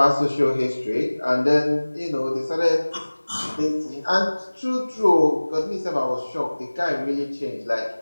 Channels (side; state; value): both; inverted; correlation -1.00